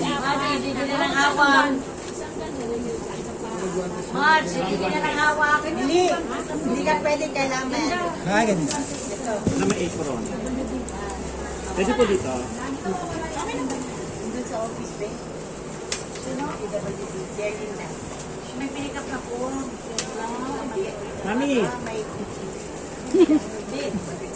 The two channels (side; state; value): both; identical; correlation 1.00